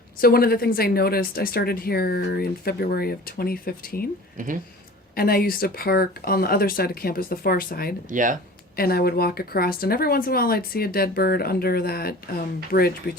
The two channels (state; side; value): normal; both; correlation 0.42